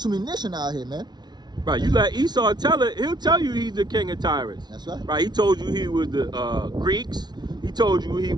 nation out here, man. Right, you let Esau tell it, he'll tell you he's the king of Tyrus. That's right. Right, he told you he was the Greeks. He told you he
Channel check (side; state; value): left; late; 0.20 ms